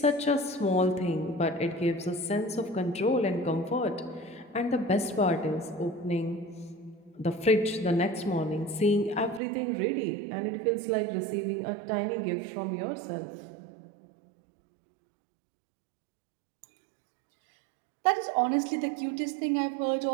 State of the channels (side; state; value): left; drops out; at 9.4 s